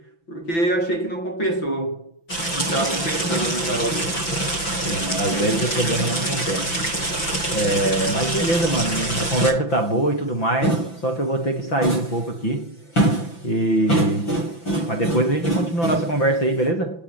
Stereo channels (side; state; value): right; late; 5.9 ms